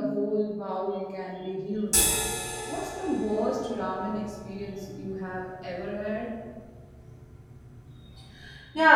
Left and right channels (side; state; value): both; identical; correlation 1.00